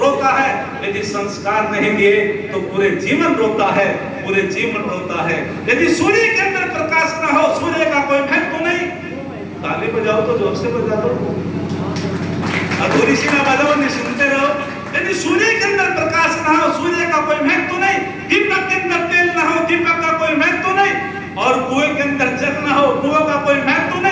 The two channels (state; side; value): identical; both; correlation 1.00